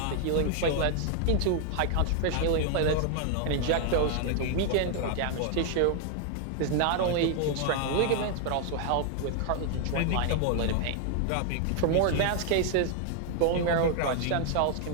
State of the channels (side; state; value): both; different; correlation 0.00